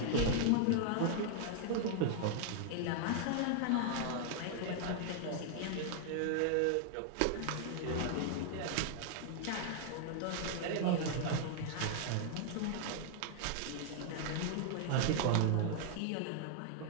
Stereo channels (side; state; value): both; different; correlation 0.00